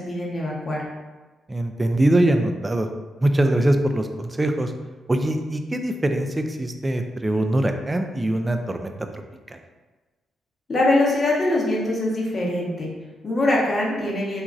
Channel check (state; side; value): normal; both; correlation 0.88